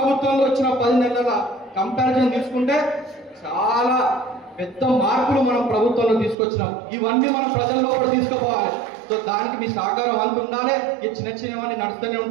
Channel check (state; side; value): drops out; left; at 6.4 s